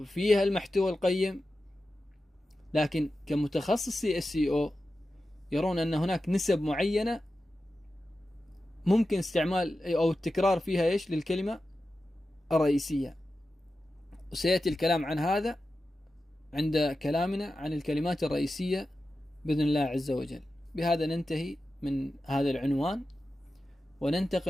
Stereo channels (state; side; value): normal; both; correlation 0.92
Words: المحتوى القيم. لكن كمتخصصي SEO يرون أن هناك نسب معينة ممكن استعمال أو التكرار فيها إيش للكلمة الرئيسية، وسيأتي الكلام عن هذا عند كلامنا عن الكلمات الرئيسية بإذن الله عز وجل. بهذا ننتهي من هذا العنوان